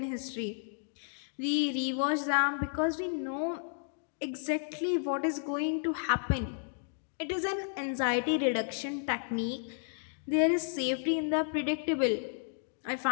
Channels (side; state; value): right; silent; digital silence